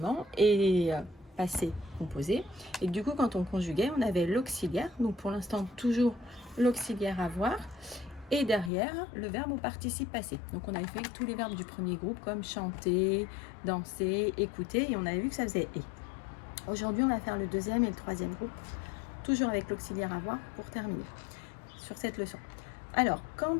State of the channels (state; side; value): drops out; right; at 8.7 s